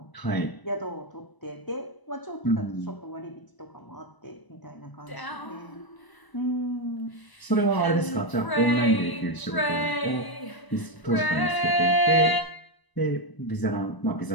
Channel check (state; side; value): late; right; 1.0 ms